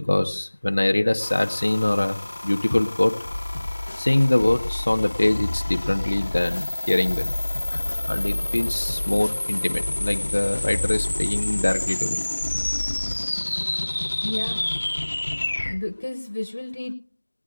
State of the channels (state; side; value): inverted; both; correlation -1.00